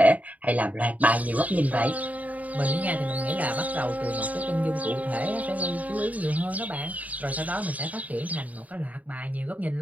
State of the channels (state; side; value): late; left; 0.072 ms